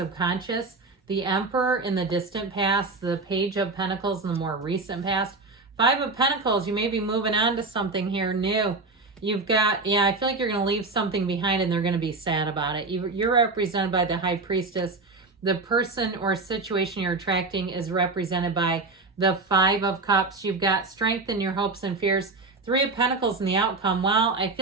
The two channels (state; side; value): quieter; left; 3.6 dB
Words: the Emperor in the distant past, the Page of Pentacles in the more recent past. Five of Pentacles, you may be moving on to something here new. You've got, I feel like you're going to leave something behind and they're going to be sad about it. You're represented by the High Priestess. The person or situation you're attracting is represented by the Five of Cups. You've got strength in your hopes and fears. Three of Pentacles in the outcome. Well, I